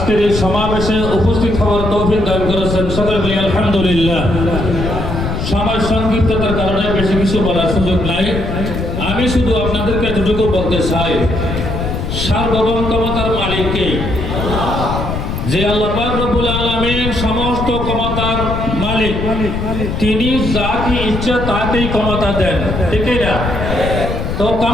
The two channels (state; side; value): noise; left; rumble, 4 dB below the sound